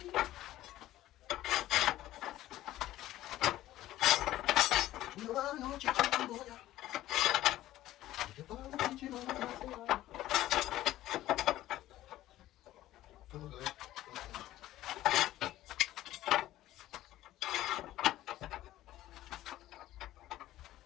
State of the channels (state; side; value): quieter; right; 14.7 dB